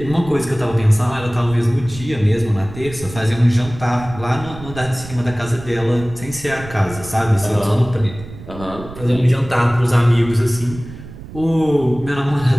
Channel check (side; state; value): right; noise; rumble, 14 dB below the sound